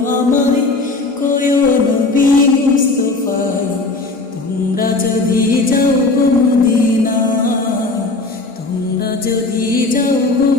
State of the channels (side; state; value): right; quieter; 3.4 dB